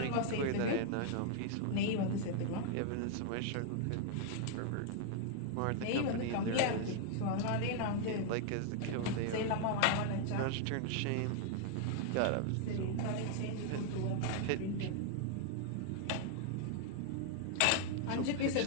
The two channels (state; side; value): different; both; correlation 0.00